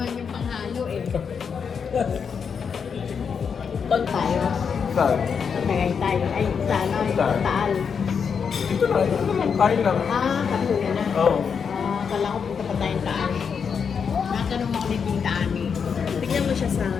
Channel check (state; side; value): quieter; right; 6.5 dB